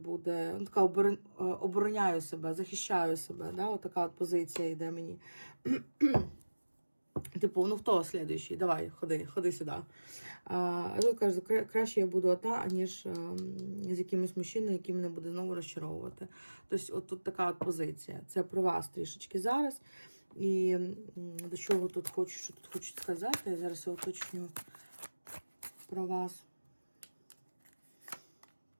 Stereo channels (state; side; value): inverted; both; correlation -1.00